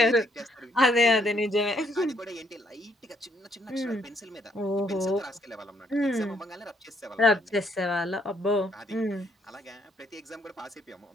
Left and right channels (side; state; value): both; normal; correlation 0.70